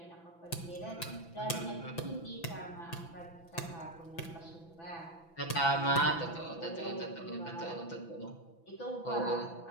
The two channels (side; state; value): right; late; 6.0 ms